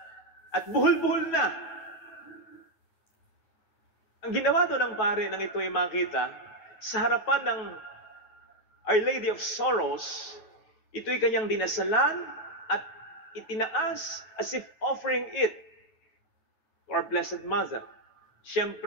at buhol-buhol na. Ang ginawa doon ng pare nang ito ay makita, sa harapan ng Our Lady of Sorrows, ito'y kanyang dinasalan at itinaas as if offering it to our Blessed Mother.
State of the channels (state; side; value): late; right; 9.2 ms